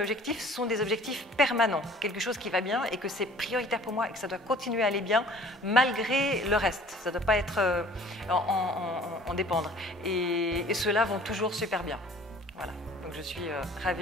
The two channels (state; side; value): normal; both; correlation 0.50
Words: sont des objectifs permanents, quelque chose qui va bien et que c'est prioritaire pour moi et que ça doit continuer à aller bien malgré le reste. Ça ne doit pas être en dépendre. Et ceux-là vont toujours super bien. Voilà. Donc je suis